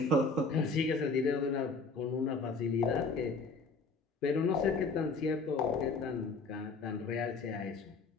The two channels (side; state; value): right; quieter; 3.9 dB